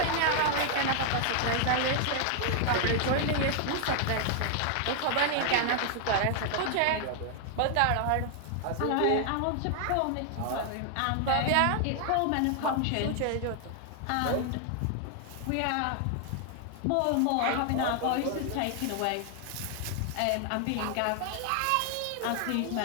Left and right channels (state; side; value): different; both; correlation 0.00